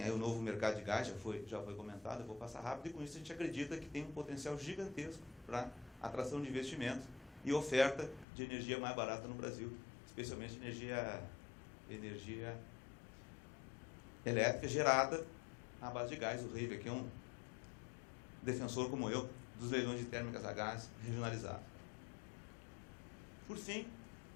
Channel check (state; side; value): drops out; right; at 8.2 s